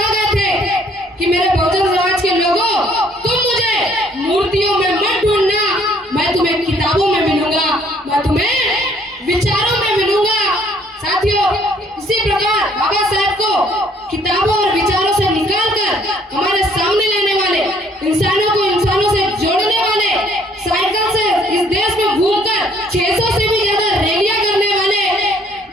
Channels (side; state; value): both; normal; correlation 0.62